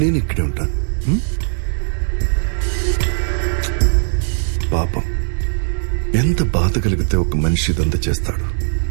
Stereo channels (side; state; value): left; silent; digital silence